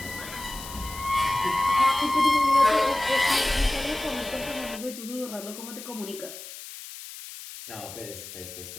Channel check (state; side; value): noise; left; hiss, 13 dB below the sound